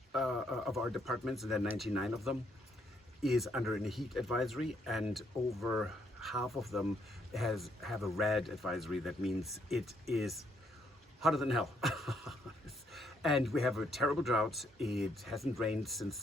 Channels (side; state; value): both; normal; correlation 0.72